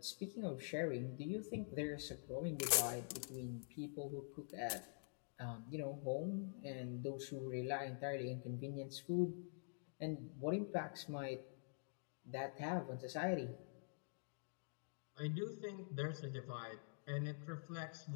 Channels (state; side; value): silent; right; digital silence